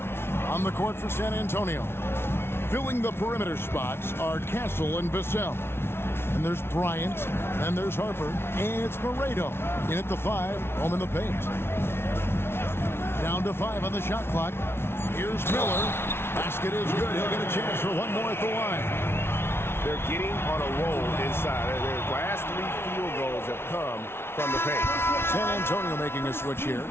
On the court for San Antonio. Filling the perimeter spots are Castle and Vassell. And there's Bryant. Then there's Harper. And it's Moreto. In at the 5. Home in the paint. Down to 5 on the shot clock. Here's Miller. Basket is good. He'll get a chance for one more at the line. They're getting on a roll inside. Their last 3 field goals have come from the paint. San Antonio making a switch here.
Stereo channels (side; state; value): right; late; 0.12 ms